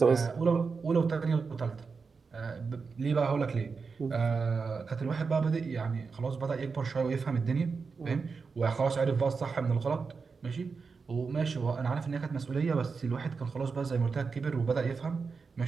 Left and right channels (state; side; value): quieter; left; 5.0 dB